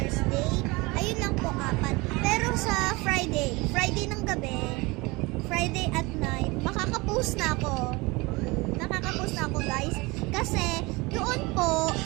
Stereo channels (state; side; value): quieter; left; 24.2 dB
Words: ayun lang po 4. Pero sa Friday ng gabi, Friday at night, makakapost na ako. Nakakapost na ako, guys. Kasi, doon po,